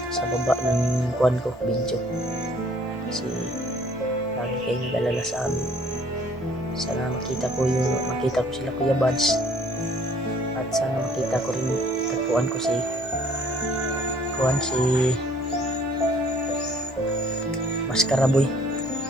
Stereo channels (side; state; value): both; normal; correlation 0.59